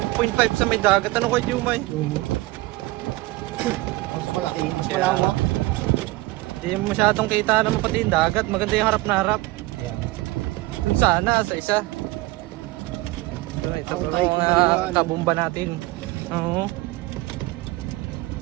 sa may dagat. Ano kayo, Jumay? Mas malaki, mas malawak. Hindi masyadong kita naman pati yung dagat. Maganda yung harap na harap. Ayan. Dun sana, sa isa. Ito Ako tayo mga kumaliwan. kabumba natin. Oo.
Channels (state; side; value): quieter; left; 20.1 dB